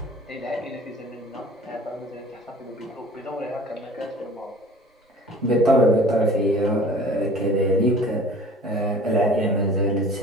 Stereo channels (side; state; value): both; normal; correlation 0.46